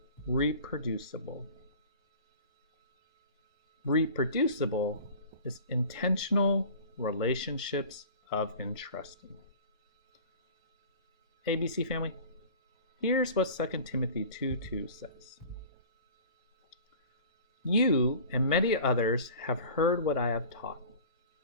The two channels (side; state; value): both; inverted; correlation -0.42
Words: reproducible. Reproducible is intentional relationships of entrusting. ABC family, here's what 2 Timothy 2:2 says. You and many others have heard what I have taught.